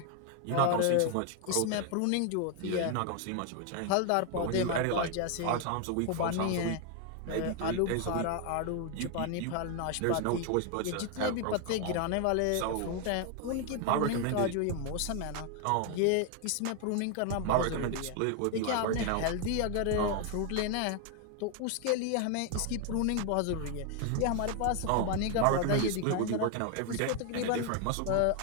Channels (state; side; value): different; both; correlation 0.01